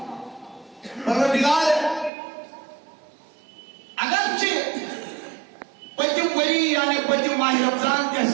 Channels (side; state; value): left; drops out; at 2.1 s